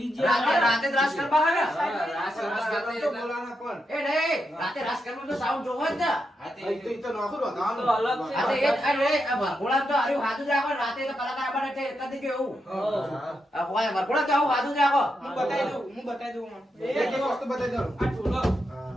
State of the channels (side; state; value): both; normal; correlation 0.84